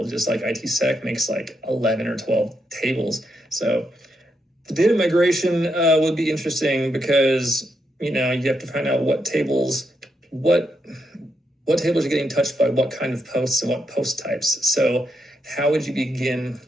just like ITsec makes like 11 or 12 tables. So the data migration would be interesting because, you have to find out what tables are getting touched by what kind of posts and what post types. So how would you begin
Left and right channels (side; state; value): both; normal; correlation 0.81